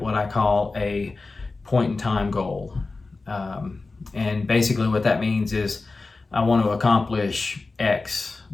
what I call a point in time goal. And basically what that means is I want to accomplish X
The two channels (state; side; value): quieter; right; 3.7 dB